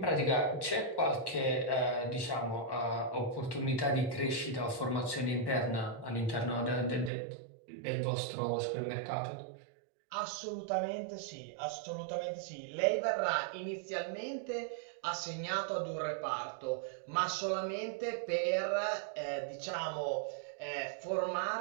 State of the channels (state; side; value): drops out; left; at 7.1 s